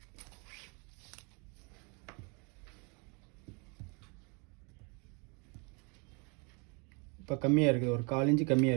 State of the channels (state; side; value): quieter; left; 33.0 dB